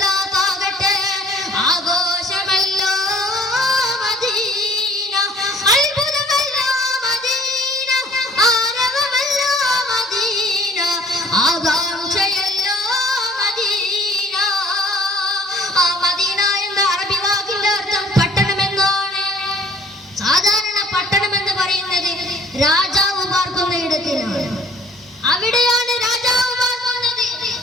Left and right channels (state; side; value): normal; both; correlation 0.53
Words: ആഘോഷമല്ലോ മദീന, അത്ഭുതമല്ലോ മദീന, ആരവമല്ലോ മദീന, ആകാംക്ഷയല്ലോ മദീന. ആ മദീന എന്ന അറബി വാക്കിന്റെ അർത്ഥം പട്ടണം എന്നാണ്. സാധാരണ പട്ടണം എന്ന് പറയുന്നത് രാജാവ് പാർക്കുന്ന ഇടത്തിനാണ്. അവിടെയാണ് രാജാവ് പാർക്കുന്നത്.